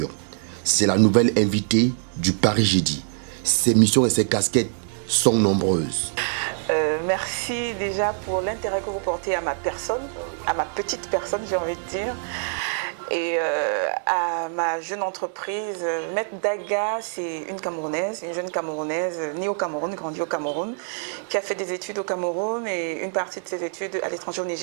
C'est la nouvelle invitée du Paris Jeudi. Ses missions et ses casquettes sont nombreuses. Merci déjà pour l'intérêt que vous portez à ma personne, à ma petite personne, j'ai envie de dire, et à ma jeune entreprise. Maître Daga, c'est une Camerounaise, une jeune Camerounaise, née au Cameroun, grandie au Cameroun, qui a fait des études au Cameroun et une partie de ses études à l'étranger au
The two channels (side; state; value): left; silent; 59 dB below the other